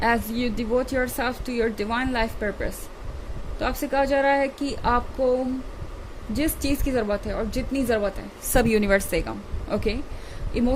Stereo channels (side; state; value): both; identical; correlation 1.00